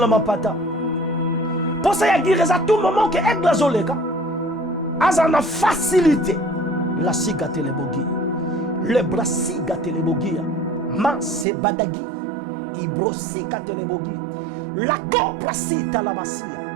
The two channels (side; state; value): left; drops out; at 11.5 s